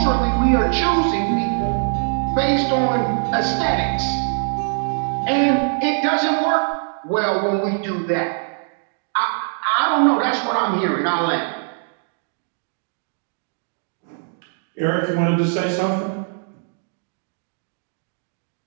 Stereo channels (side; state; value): left; silent; 59 dB below the other